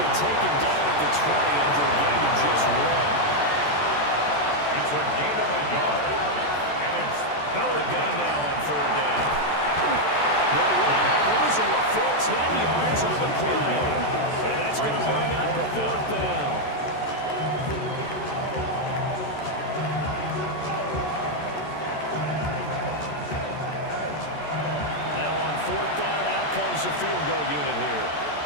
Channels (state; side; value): late; right; 14 ms